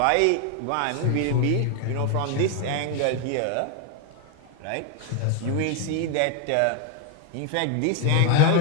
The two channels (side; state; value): both; different; correlation 0.01